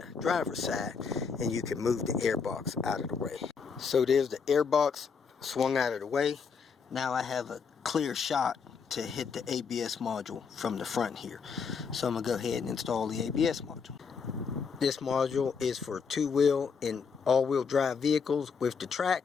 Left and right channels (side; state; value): right; quieter; 5.8 dB